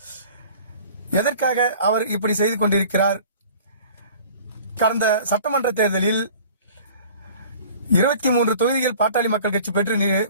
எதற்காக அவர் இப்படி செய்து கொண்டிருக்கிறார்? கடந்த சட்டமன்ற தேர்தலில் 23 தொகுதிகள் பாட்டாளி மக்கள் கட்சி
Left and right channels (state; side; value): inverted; both; correlation -0.46